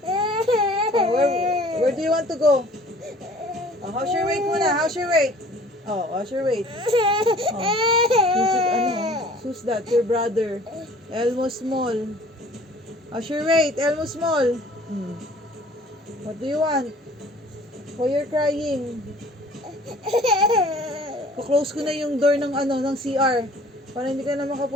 Oh, where do you want to go? Oh, how's your weight muna? How's your weight? Oh, how's your weight? Oh, who's that? Your brother. Elmo Small. How's your weight? Elmo Small. What do you want? Why you're crying? Close ko na yung door ng ng CR para hindi ka na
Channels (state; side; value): normal; both; correlation 0.51